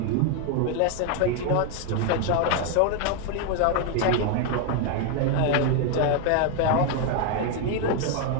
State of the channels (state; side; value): different; both; correlation 0.01